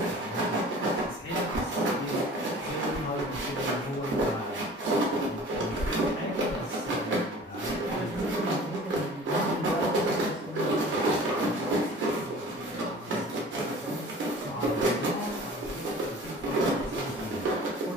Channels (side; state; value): both; normal; correlation 0.44